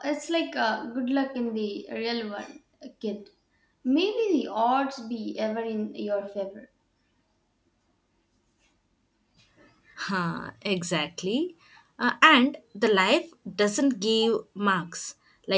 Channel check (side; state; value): both; identical; correlation 1.00